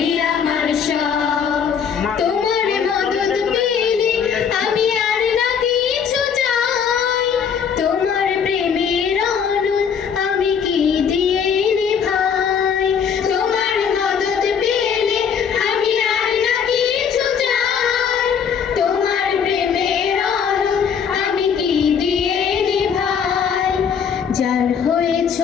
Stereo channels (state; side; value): quieter; right; 7.1 dB